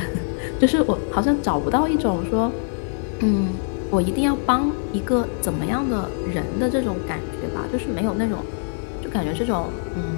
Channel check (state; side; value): silent; right; digital silence